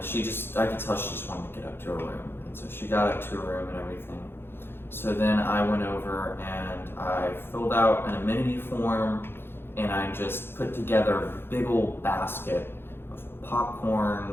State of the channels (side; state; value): right; late; 0.11 ms